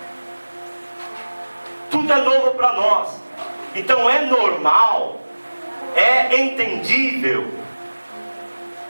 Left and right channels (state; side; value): inverted; both; correlation -1.00